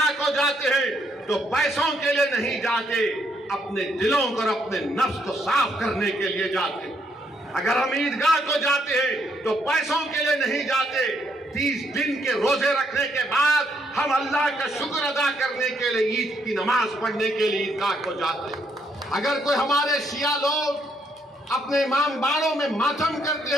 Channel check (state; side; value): normal; both; correlation 0.73